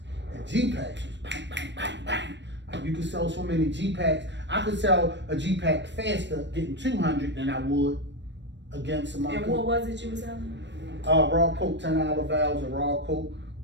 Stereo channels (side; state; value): left; late; 0.52 ms